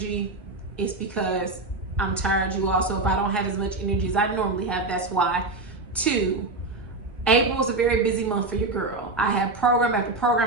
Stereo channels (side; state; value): left; quieter; 3.2 dB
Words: it's because I'm tired, you all. So if I don't have as much energy as I normally have, that's why. Two, April is a very busy month for your girl. I have program after program,